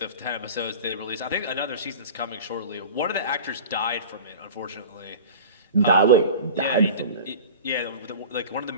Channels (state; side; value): inverted; both; correlation -0.36